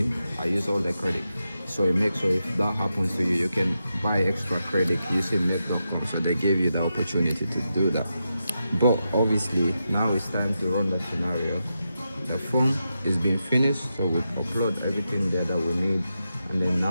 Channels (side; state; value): both; inverted; correlation -0.87